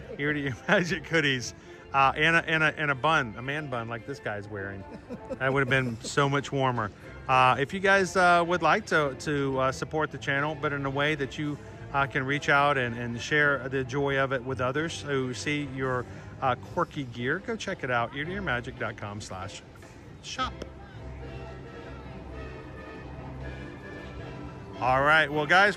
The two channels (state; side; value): identical; both; correlation 1.00